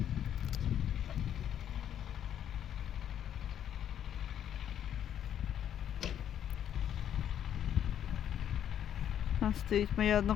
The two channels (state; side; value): quieter; right; 9.9 dB